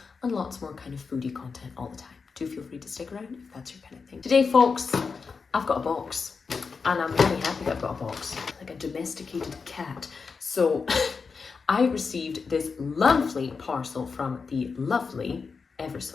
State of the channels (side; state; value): right; quieter; 5.1 dB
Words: and lots more kind of foodie content all the time. Do feel free to stick around if that's your kind of thing. Today, folks, I've got a box, and I'm really happy that I've got a box, like a domesticated cat. So I received this lovely parcel from the lovely, ever